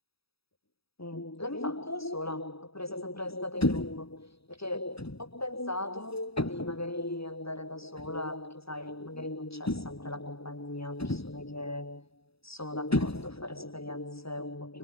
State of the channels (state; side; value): late; right; 0.77 ms